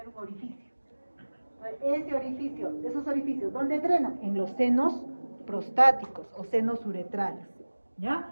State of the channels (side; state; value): both; inverted; correlation -1.00